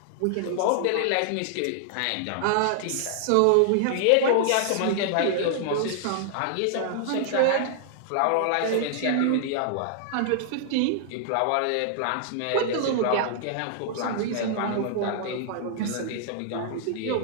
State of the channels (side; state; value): both; different; correlation -0.01